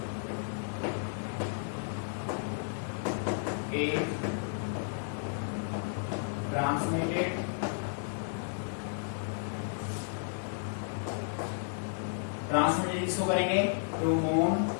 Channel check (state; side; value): silent; right; digital silence